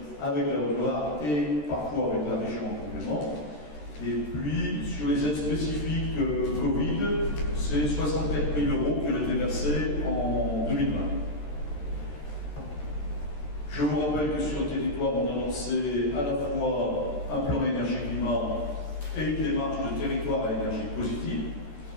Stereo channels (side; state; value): right; late; 13 ms